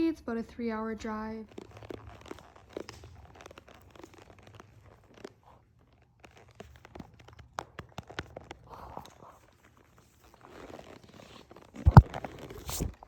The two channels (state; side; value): identical; both; correlation 1.00